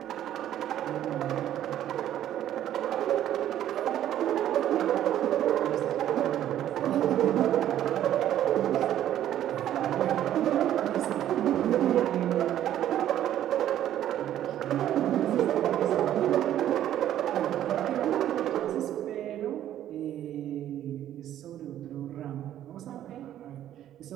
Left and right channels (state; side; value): quieter; left; 11.7 dB